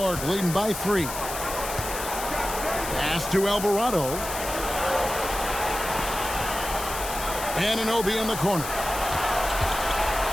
leading by 3. Pass to Alvarado. Anunoby in the corner.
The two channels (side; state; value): left; noise; hiss, 7 dB below the sound